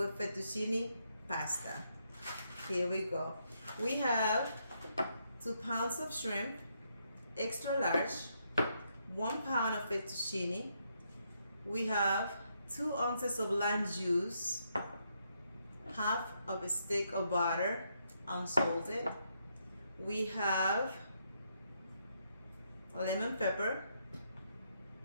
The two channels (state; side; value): inverted; both; correlation -0.77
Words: fettuccine pasta. Here we go. We have 2 pounds of shrimp, extra large, 1 pound of fettuccine. We have 2 ounces of lime juice, half of a stick of butter, unsalted. We have lemon pepper